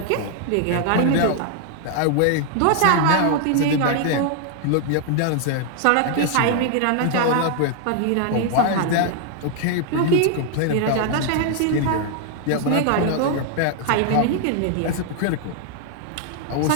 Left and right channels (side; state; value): both; different; correlation 0.00